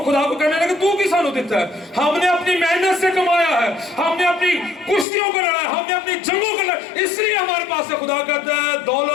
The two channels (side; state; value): right; drops out; at 5.1 s